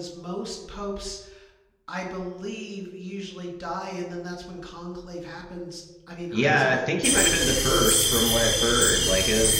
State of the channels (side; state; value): both; identical; correlation 1.00